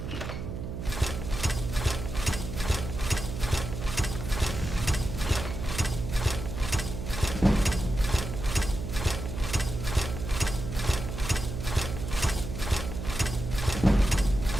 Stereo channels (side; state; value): right; noise; hum, 6 dB below the sound